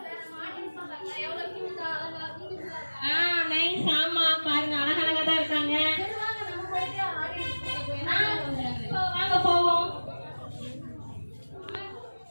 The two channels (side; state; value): both; inverted; correlation -1.00